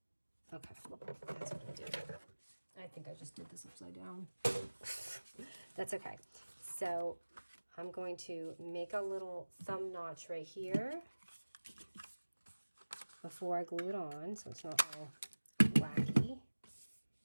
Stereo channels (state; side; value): inverted; both; correlation -1.00